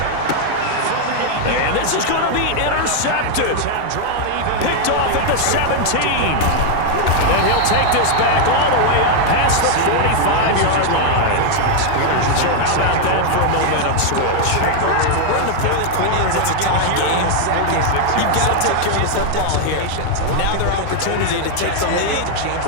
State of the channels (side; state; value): both; different; correlation 0.00